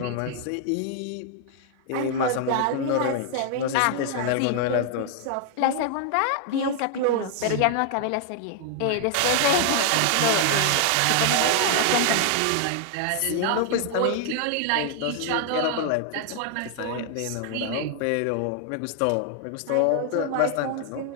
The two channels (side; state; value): both; different; correlation 0.00